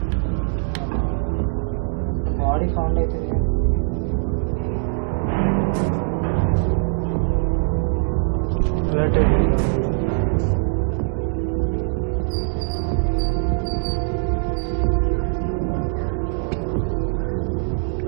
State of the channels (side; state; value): left; silent; 59 dB below the other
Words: body found అవుతుంది